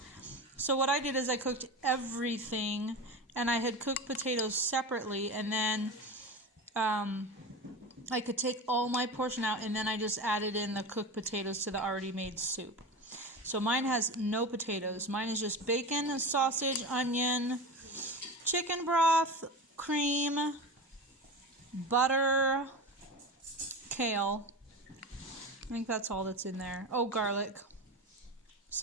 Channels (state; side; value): normal; both; correlation 0.26